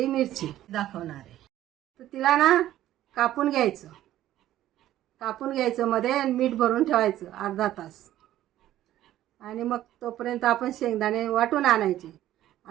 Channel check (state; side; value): quieter; left; 13.4 dB